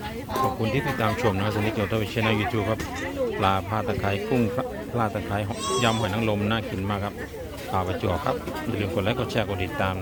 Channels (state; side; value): identical; both; correlation 1.00